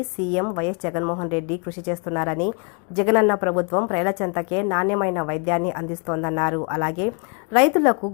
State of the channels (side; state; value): right; quieter; 35.8 dB